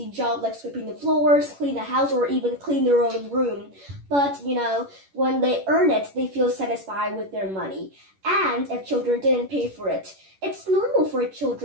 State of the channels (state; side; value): late; left; 11 ms